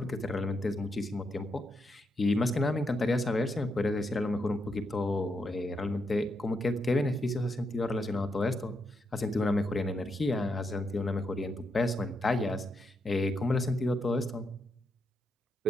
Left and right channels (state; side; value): normal; both; correlation 0.81